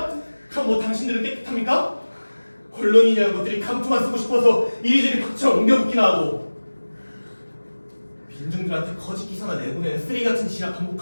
그럼 뭐 당신들은 깨끗합니까? 언론인이라는 것들이 감투만 쓰고 싶어서 이리저리 박처럼 옮겨붙기나 하고 민중들한테 거짓 기사나 내보내는 쓰레기 같은 짓이나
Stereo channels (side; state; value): both; inverted; correlation -1.00